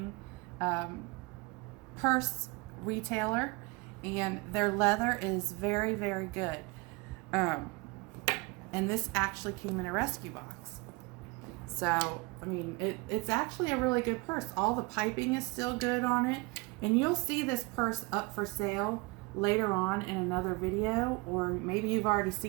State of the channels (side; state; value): left; quieter; 26.2 dB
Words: purse retailer, and their leather is very, very good. And this actually came in a rescue box. So, I mean, it's actually a really good purse. All the piping is still good on it. And you'll see this purse up for sale later on in another video, or maybe you've already